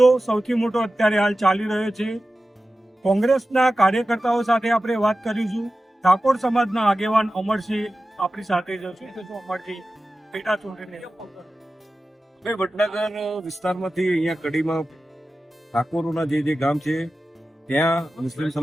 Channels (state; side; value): normal; both; correlation 0.94